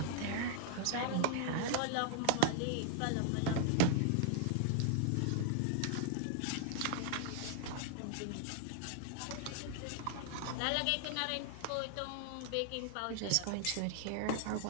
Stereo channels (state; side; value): different; both; correlation 0.00